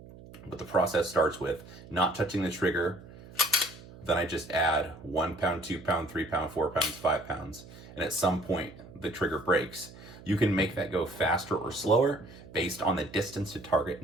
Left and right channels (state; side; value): noise; right; hum, 18 dB below the sound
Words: but the process starts with not touching the trigger. Then I just add 1 pound, 2 pound, 3 pound, 4 pounds, 5 pounds. And at some point the trigger breaks. You can make that go faster or slower based on the distance to target